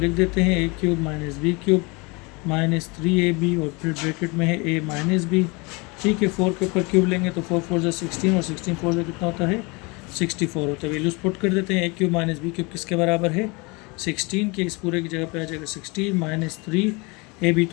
देते हैं a cube minus B cube minus 3ab, और फिर ब्रैकेट में है ए माइनस बी। ठीक है, 4 के ऊपर क्यूब लेंगे तो 4 4 16, और 16 4 से कितना होता है 64 होता है। वैल्यूज पुट कर देते हैं। A cube minus B cube किसके बराबर है 16 के, इस पूरे की जगह पे आ जाएगा 16 माइनस 3ab,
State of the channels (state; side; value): quieter; right; 27.8 dB